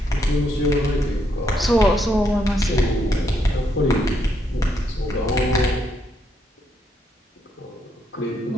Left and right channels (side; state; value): both; normal; correlation 0.76